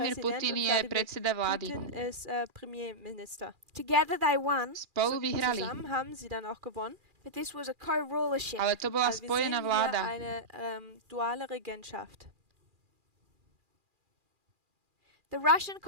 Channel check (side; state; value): left; late; 2.4 ms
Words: Putin je predseda vlády. Together they won. Spolu vyhrali. But this was a co-rulership. Ale to bola spojená vláda. The Russian